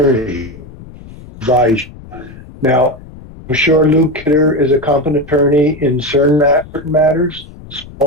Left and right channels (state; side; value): noise; left; rumble, 18 dB below the sound